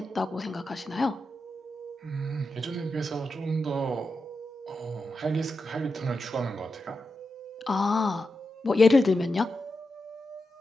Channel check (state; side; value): normal; both; correlation 0.88